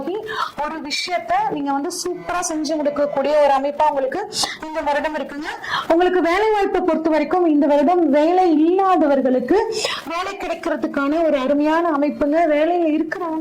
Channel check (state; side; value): identical; both; correlation 1.00